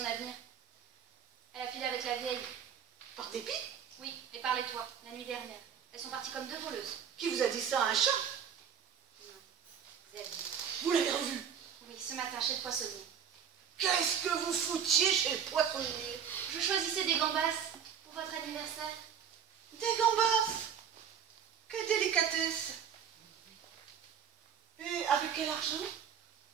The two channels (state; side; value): quieter; left; 8.1 dB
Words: avenir. Elle a filé avec la vieille. Par dépit? Oui, et par les toits, la nuit dernière. Elles sont parties comme deux voleuses. Qui vous a dit ça, un chat? Non, Xavier. Vous l'avez revu? Oui, ce matin chez le poissonnier. Qu'est-ce que vous foutiez chez le poissonnier? Je choisissais des gambas pour votre anniversaire. Des gambas? Quelle délicatesse! Et avec quel argent?